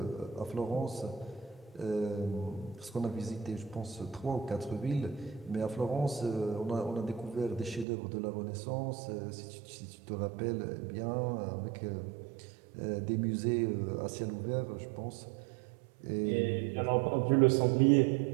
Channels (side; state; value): left; drops out; at 7.9 s